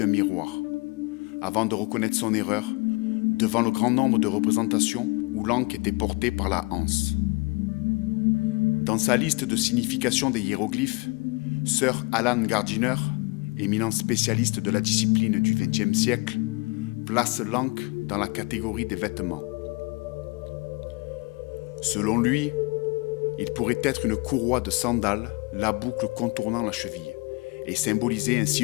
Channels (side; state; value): right; quieter; 26.7 dB